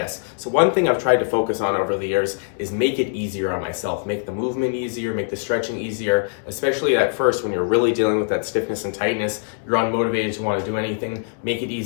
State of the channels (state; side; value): silent; right; 58 dB below the other